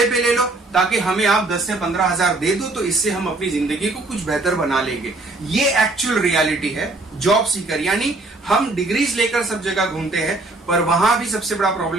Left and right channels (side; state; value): left; quieter; 3.0 dB